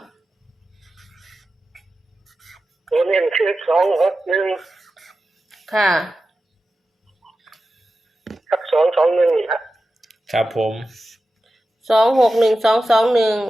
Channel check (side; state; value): both; normal; correlation 0.92